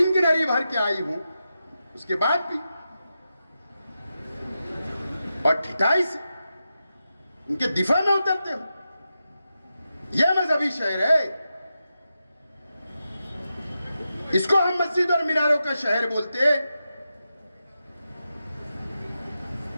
की नरी भर के आई हूं। उसके बाद भी और ठिठाई से उनके दिफा में उतरते हो। यह मजहबी शहर है। इसको हम मस्जिद और मीनारों का शहर बोलते हैं।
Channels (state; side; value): inverted; both; correlation -0.90